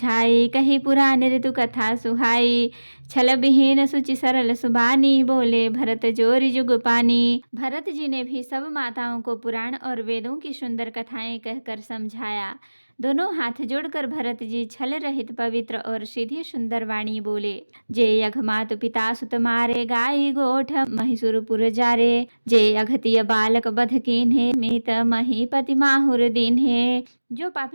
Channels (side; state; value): both; inverted; correlation -1.00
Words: कही पुराण ऋतु कथा सुहाई। छल विहीन सुचि सरल सुबानी, बोले भरत जोरी जुग पानी। भरत जी ने भी सब माताओं को पुराण और वेदों की सुंदर कथाएं कहकर समझाया। दोनों हाथ जोड़कर भरत जी छल रहित पवित्र और सीधी सुंदर वाणी बोले। जे यघ मातु पिता सुत मारे, गाई गोठ महिषुरपुर जारे। जे अघतिय बालक बध कीन्हे, मीत महीपति माहुर दीन्हे। जो